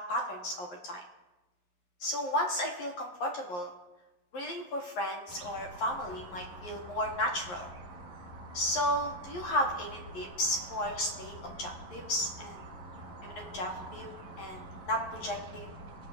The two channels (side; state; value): right; late; 11 ms